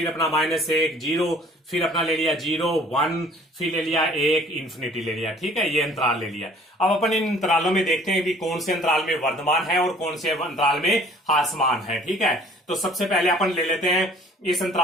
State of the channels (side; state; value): both; normal; correlation 0.53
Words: अपना -1, 0, फिर अपना ले लिया 0, 1, फिर ले लिया 1, इन्फिनिटी ले लिया। ठीक है, ये अंतराल ले लिया। अब अपन इन अंतरालों में देखते हैं कि कौन से अंतराल में वर्धमान है और कौन से अंतराल में ह्रासमान है। ठीक है, तो सबसे पहले अपन ले लेते हैं इस